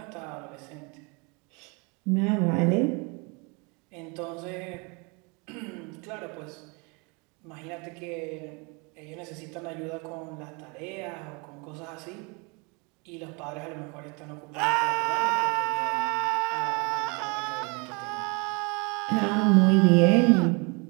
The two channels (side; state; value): left; quieter; 30.8 dB